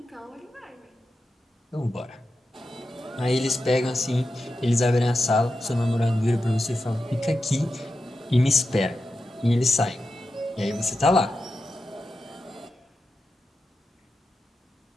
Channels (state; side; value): normal; both; correlation 0.90